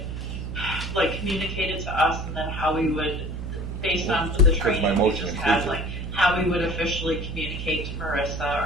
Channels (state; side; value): noise; right; hum, 6 dB below the sound